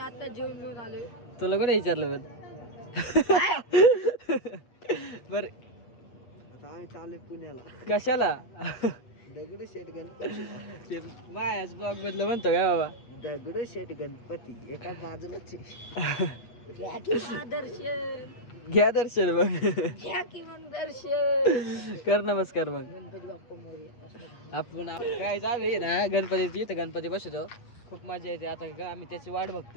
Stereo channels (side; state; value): right; late; 8.4 ms